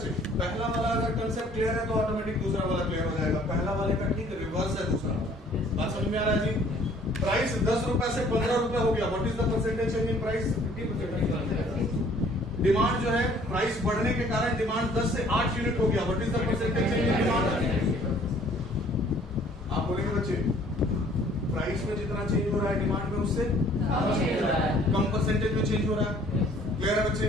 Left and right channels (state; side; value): normal; both; correlation 0.57